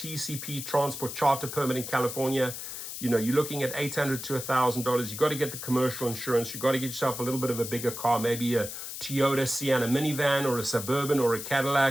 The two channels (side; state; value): left; noise; hiss, 8 dB below the sound